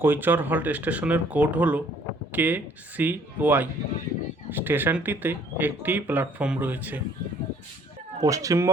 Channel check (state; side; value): normal; both; correlation 0.59